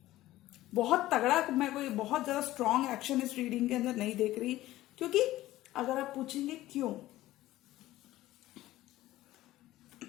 बहुत तगड़ा, मैं कोई बहुत ज्यादा स्ट्रॉन्ग एक्शन इस रीडिंग के अंदर नहीं देख रही, क्योंकि अगर आप पूछेंगे क्यों,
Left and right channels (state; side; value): quieter; right; 15.8 dB